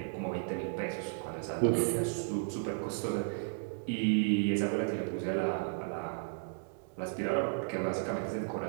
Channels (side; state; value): left; silent; digital silence